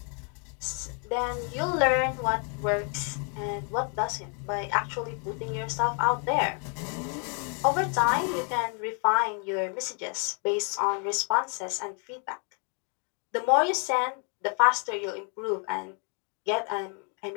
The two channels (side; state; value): right; quieter; 39.7 dB